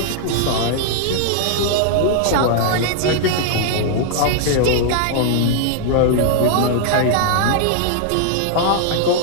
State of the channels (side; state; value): both; different; correlation -0.01